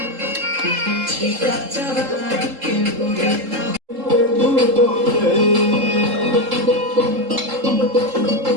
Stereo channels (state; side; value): late; left; 3.7 ms